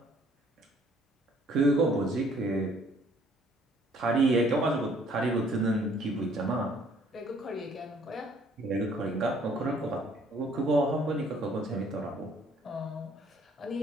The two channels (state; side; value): normal; both; correlation 0.61